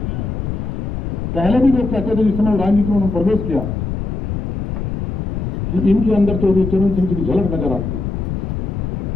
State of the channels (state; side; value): noise; left; rumble, 3 dB below the sound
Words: पहले भी लोग कहते थे जिस समय राजनीति में उन्होंने प्रवेश किया कि इनके अंदर चौधरी चरण सिंह जी की झलक नजर आती है।